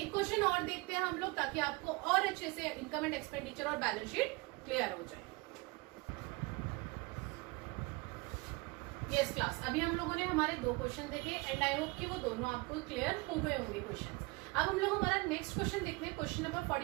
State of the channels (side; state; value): left; quieter; 25.7 dB